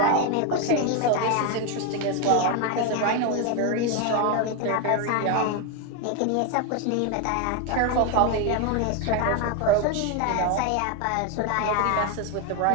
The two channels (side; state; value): both; different; correlation 0.01